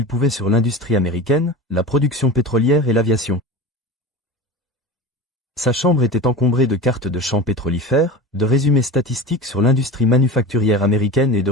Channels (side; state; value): both; normal; correlation 0.31